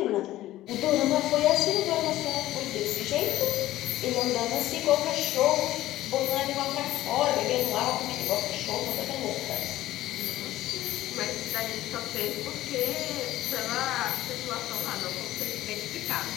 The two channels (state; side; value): quieter; right; 15.1 dB